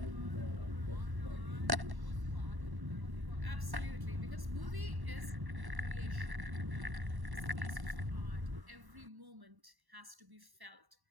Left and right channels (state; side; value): late; left; 1.1 ms